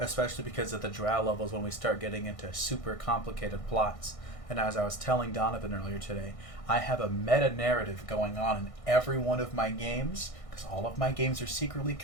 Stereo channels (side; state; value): right; late; 1.6 ms